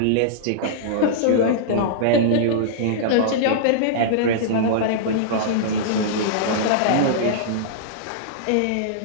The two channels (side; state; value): both; different; correlation -0.02